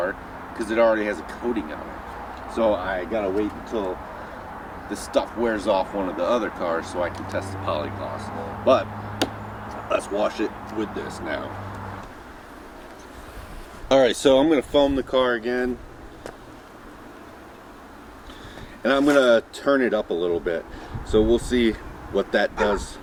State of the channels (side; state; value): both; identical; correlation 1.00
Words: because it already has a coating on it. So I gotta wait until the stuff wears off one of the other cars so I can test the polygloss. But let's wash it with this now. Alright, so I'm gonna foam the car again. And I'm gonna turn it up a little bit. So we'll see what that does